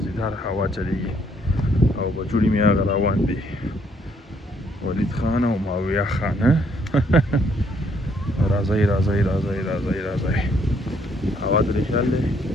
هوا چلیږي او بچوړي مې هغه روان دي ولید خان او ماویه خان راځئ راځئ راځئ راځئ راځئ هوا ترې خیال دی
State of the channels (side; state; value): both; normal; correlation 0.69